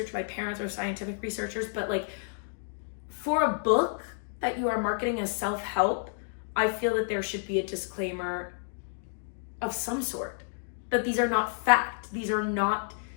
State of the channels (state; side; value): silent; right; digital silence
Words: My parents are scientific researchers, but like for a book that you are marketing as self-help, I feel that there should be a disclaimer of some sort, that these are not fact. These